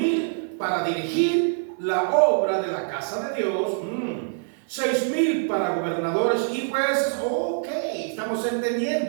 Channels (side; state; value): left; silent; 57 dB below the other